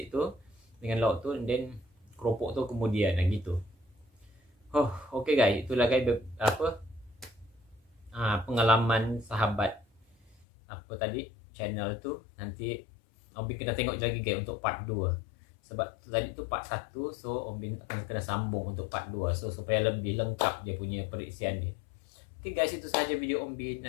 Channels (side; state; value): right; drops out; at 10.5 s